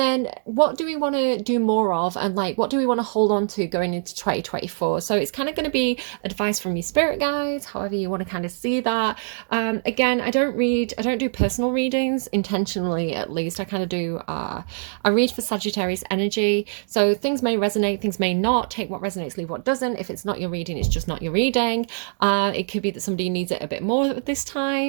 what do we want to do more of, and like what do we want to hold on to going into 2024? So it's kind of going to be advice from your spirit guides, however you want to kind of see that. Again, I don't do personal readings intentionally, at least. I kind of do I read for Sagittarius energy, so things may resonate, things may not. Take what resonates, leave what doesn't. If it's not your reading, it's just not your reading. It could be that somebody needs it a bit more this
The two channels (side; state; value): left; silent; digital silence